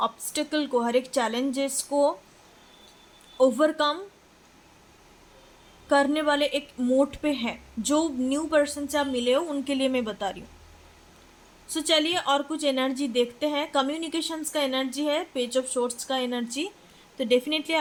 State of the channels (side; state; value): both; identical; correlation 1.00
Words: ऑब्स्टेकल को, हर एक चैलेंजेस को ओवरकम करने वाले एक मोड पे है। जो न्यू पर्सन से आप मिले हो उनके लिए मैं बता रही हूँ। सो चलिए और कुछ एनर्जी देखते हैं। कम्युनिकेशंस का एनर्जी है, पेज ऑफ शॉर्ट्स का एनर्जी। तो डेफिनेटली